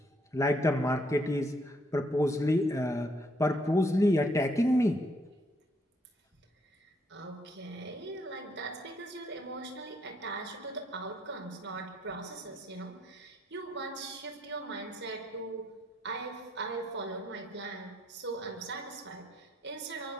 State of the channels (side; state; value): both; normal; correlation 0.71